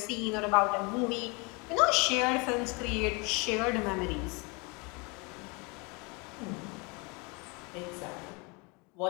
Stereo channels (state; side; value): quieter; right; 29.5 dB